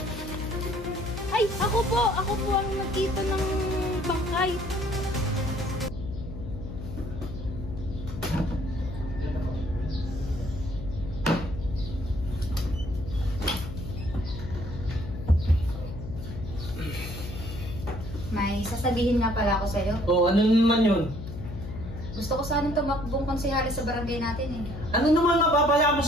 Ay, ako po ang nagkita ng bangkay. May sasabihin nga pala ako sa'yo. Oh, ano naman yun? Gusto ko sanang tumakbong konsehali sa barangay natin eh. Ano naman mapapaya mo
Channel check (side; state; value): left; noise; hum, 9 dB below the sound